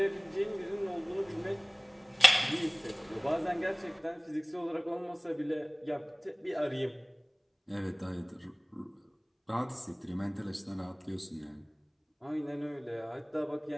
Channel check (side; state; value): both; identical; correlation 1.00